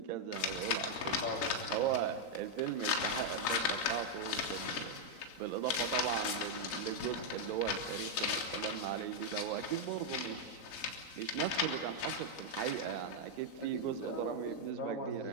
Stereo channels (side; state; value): right; late; 3.9 ms